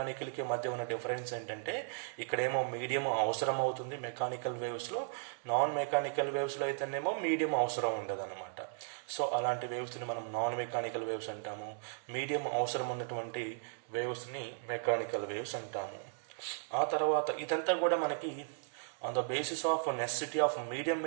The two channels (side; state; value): left; silent; digital silence